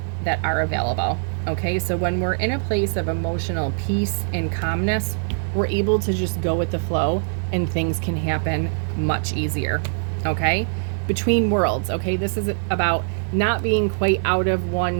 that are available, okay? So when we're in a place of emotional peace and calmness, we're able to just go with the flow and things can happen much easier, okay? Between worlds, okay? This is about not being quite out of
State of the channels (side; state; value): left; silent; digital silence